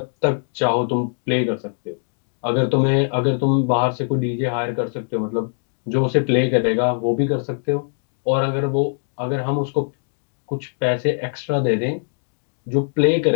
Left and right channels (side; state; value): right; silent; digital silence